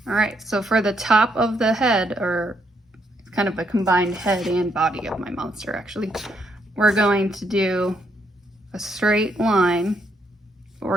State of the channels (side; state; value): both; normal; correlation 0.75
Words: All right, so for the top of the head, or kind of a combined head and body of my monster actually, we're going to do a straight line, but